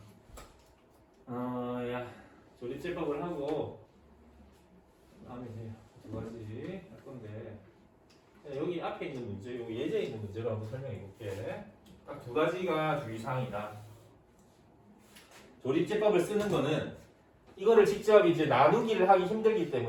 조립제법을 하고 다음에 이제 두 가지 할 건데 여기 앞에 있는 문제, 여기 예제에 있는 문제로 한번 설명해 볼게. 딱 두 가지가 주의사항이다. 조립제법을 쓰는 거는 이거를 직접 이제 나누기를 하기 힘들기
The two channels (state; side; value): identical; both; correlation 1.00